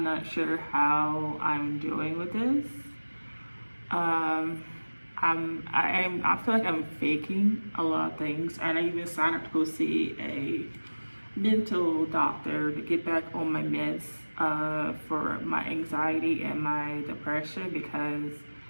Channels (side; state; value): both; inverted; correlation -1.00